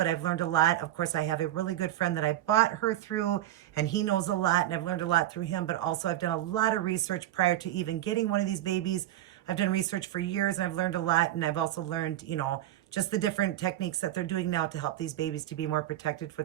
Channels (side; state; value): left; quieter; 13.4 dB